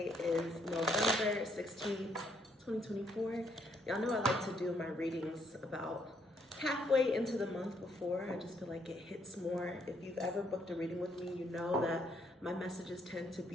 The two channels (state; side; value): normal; both; correlation 0.71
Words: is November 16th, 2024. Y'all know I like to do my readings about halfway into the month before. I just feel like it hits more. If you've ever booked a reading with me, you know that my messages tend to